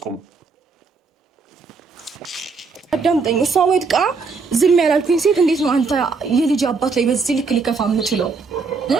አዳምጠኝ። እሷ ወድቃ ዝም ያላልኩኝ ሴት እንዴት ነው አንተ የልጅ አባት ላይ በዚህ ልክ ሊከፋ የምችለው?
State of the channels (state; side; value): quieter; left; 4.6 dB